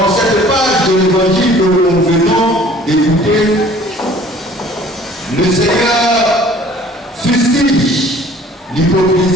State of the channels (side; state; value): both; normal; correlation 0.52